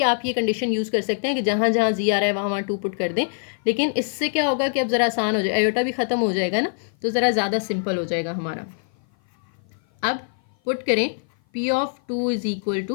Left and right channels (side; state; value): right; silent; 56 dB below the other